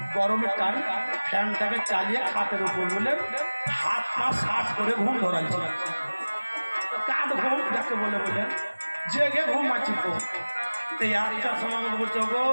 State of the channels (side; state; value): both; inverted; correlation -1.00